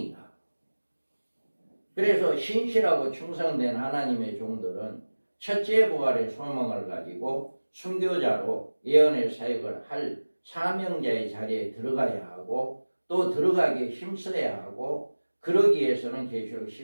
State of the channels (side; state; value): both; inverted; correlation -1.00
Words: 그래서 신실하고 충성된 하나님의 종들은 첫째 부활의 소망을 가지고 순교자로 예언의 사역을 할 사명자의 자리에 들어가야 하고 또 들어가기에 힘써야 하고 그러기 위해서는 계시록